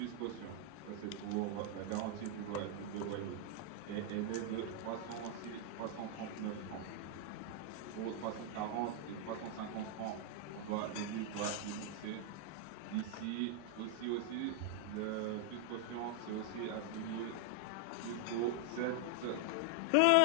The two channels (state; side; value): different; both; correlation 0.00